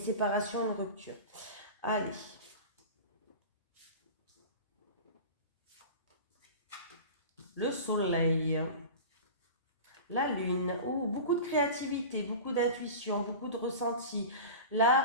une rupture. Allez. Le soleil. La lune. Oh, beaucoup de créativité, beaucoup d'intuition, beaucoup de ressenti.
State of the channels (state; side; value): inverted; both; correlation -0.33